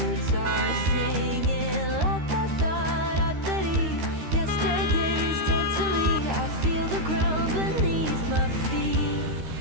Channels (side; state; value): left; late; 13 ms